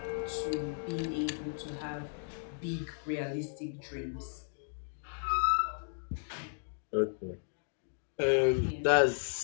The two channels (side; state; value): right; silent; digital silence